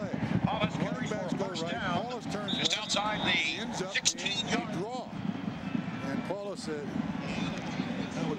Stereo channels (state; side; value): identical; both; correlation 1.00